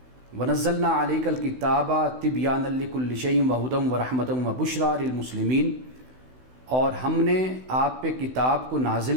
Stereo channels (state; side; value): late; left; 16 ms